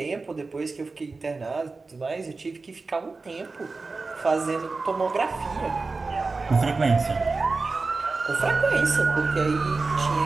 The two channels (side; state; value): left; quieter; 3.9 dB